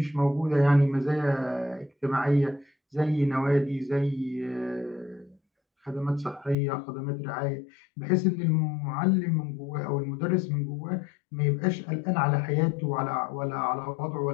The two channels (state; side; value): drops out; right; at 6.6 s